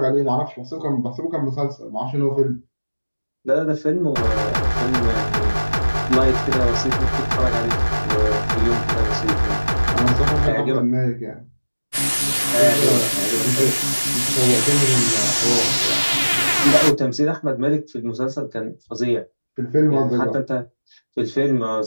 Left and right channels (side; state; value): both; inverted; correlation -1.00